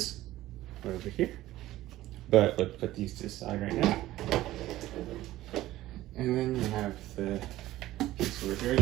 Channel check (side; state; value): left; quieter; 15.6 dB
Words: over here. But let's put these to the side right now. And then you have the piece over here